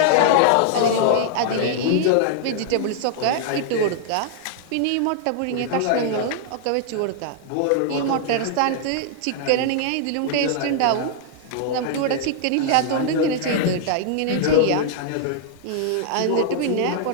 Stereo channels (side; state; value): both; different; correlation -0.01